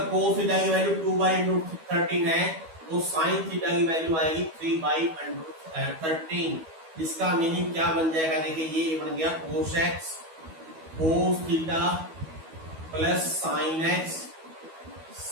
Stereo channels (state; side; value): late; left; 12 ms